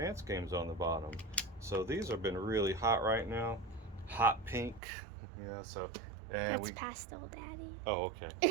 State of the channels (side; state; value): left; drops out; at 4.8 s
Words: games on the bottom. So these have been really hot right now. Hot pink. Yeah, so. And That's pastel, Daddy. Oh, okay.